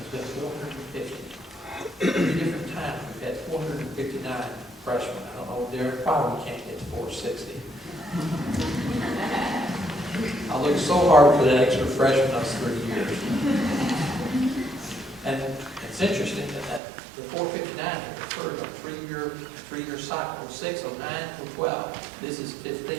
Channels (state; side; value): drops out; left; at 16.8 s